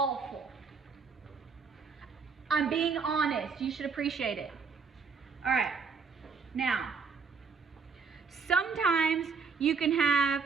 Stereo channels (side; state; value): left; quieter; 5.3 dB